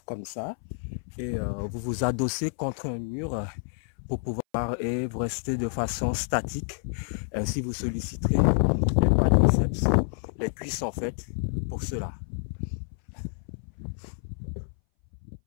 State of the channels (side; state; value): right; silent; 59 dB below the other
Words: comme ça. Et vous vous adossez contre un mur pour pouvoir et vous restez de façon statique. Ainsi, vous solliciterez les quadriceps, les cuisses en fait, pour cela.